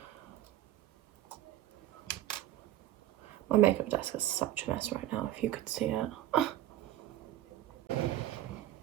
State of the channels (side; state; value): left; quieter; 13.4 dB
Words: My makeup desk is such a mess right now, if you could see it.